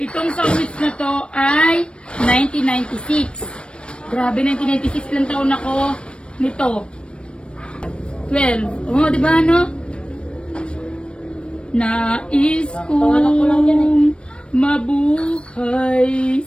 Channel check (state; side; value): late; right; 0.057 ms